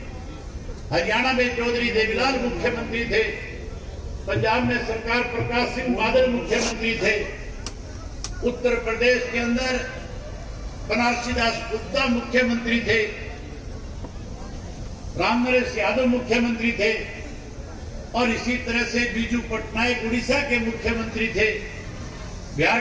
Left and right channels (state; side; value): identical; both; correlation 1.00